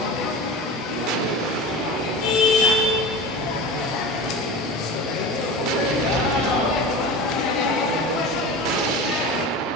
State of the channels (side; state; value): both; normal; correlation 0.31